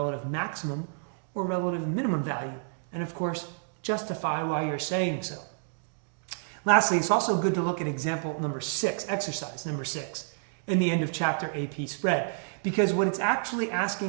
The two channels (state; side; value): silent; left; digital silence